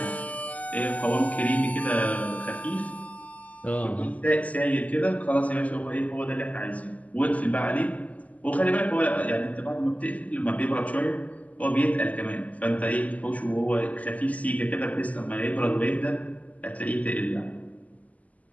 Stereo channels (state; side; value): late; right; 0.075 ms